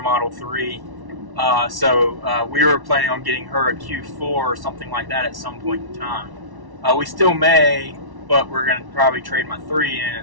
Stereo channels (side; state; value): left; late; 1.1 ms